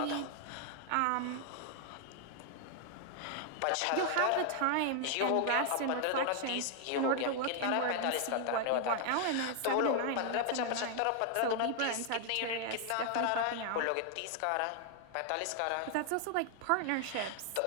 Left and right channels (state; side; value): different; both; correlation 0.00